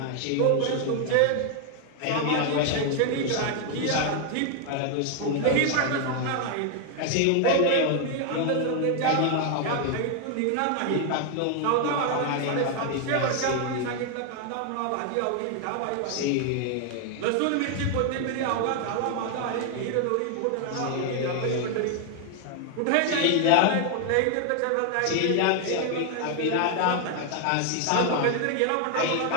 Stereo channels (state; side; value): different; both; correlation 0.00